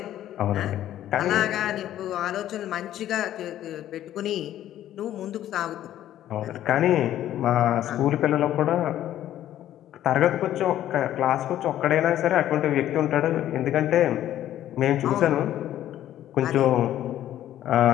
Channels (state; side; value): quieter; right; 12.3 dB